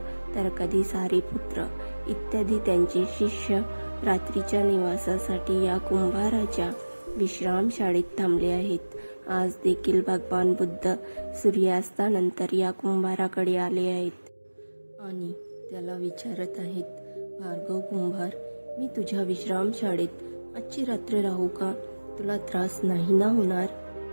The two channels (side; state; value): both; inverted; correlation -1.00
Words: तर कधी सारीपुत्र इत्यादी त्यांचे शिष्य रात्रीच्या निवासासाठी या कुंभाराच्या विश्रामशाळेत थांबले आहेत. आज देखील भगवान बुद्ध सूर्यास्तानंतर या कुंभाराकडे आले आहेत आणि त्याला विचारत आहेत, भार्गव कुंभार, मी तुझ्या विश्रामशाळेत आजची रात्र राहू का? तुला त्रास नाही ना होणार?